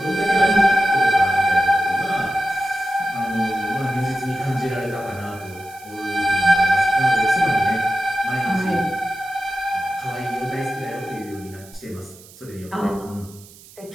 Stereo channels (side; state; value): right; noise; hiss, 22 dB below the sound